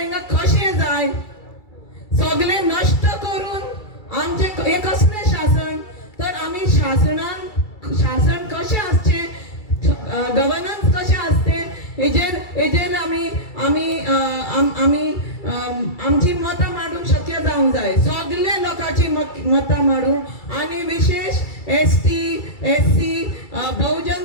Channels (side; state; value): right; late; 2.3 ms